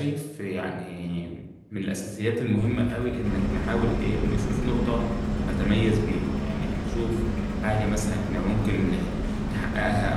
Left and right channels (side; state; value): both; identical; correlation 1.00